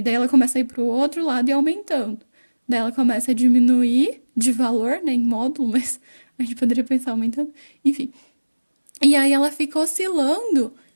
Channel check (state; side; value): inverted; both; correlation -1.00